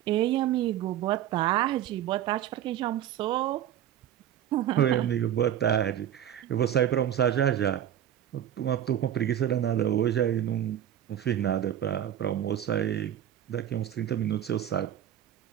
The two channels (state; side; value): quieter; left; 10.7 dB